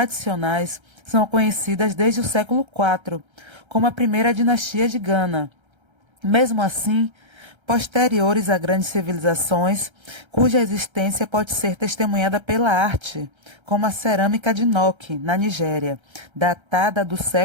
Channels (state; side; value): late; left; 1.3 ms